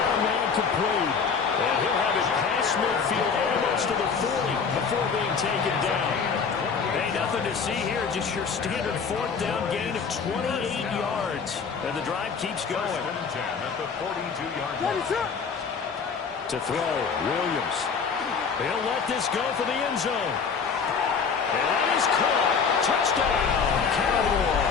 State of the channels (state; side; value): quieter; right; 5.8 dB